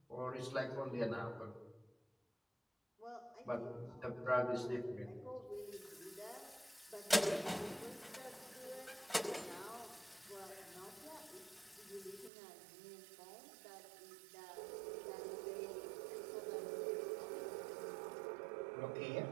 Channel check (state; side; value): drops out; left; at 12.3 s